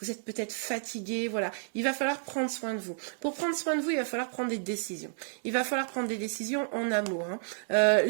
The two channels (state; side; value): silent; left; digital silence